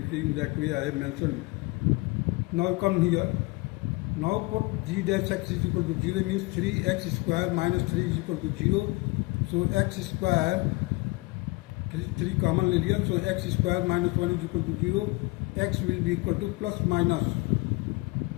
In that way I have mention. Now come here. Now put g dash x is equal to 0 means 3x square minus 3 is equal to 0. So x square 3 common ले लिया, so x square minus 1 is equal to 0. X will be equal to plus minus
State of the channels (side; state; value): right; quieter; 24.1 dB